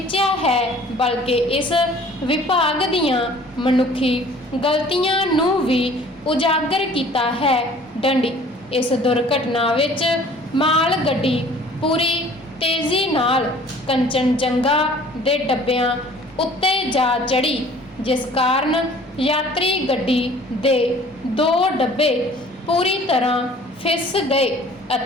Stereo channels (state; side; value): normal; both; correlation 0.51